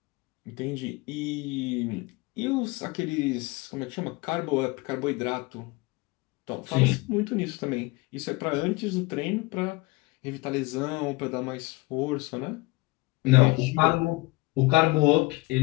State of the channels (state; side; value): quieter; right; 23.0 dB